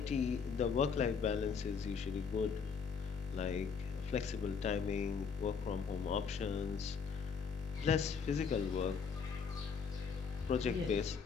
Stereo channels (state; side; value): quieter; right; 5.9 dB